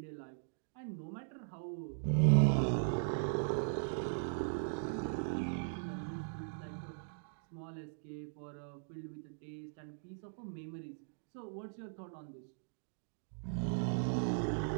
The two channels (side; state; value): left; silent; digital silence